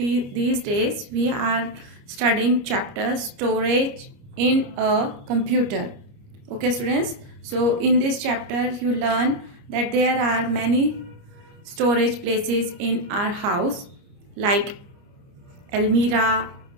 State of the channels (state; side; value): late; left; 29 ms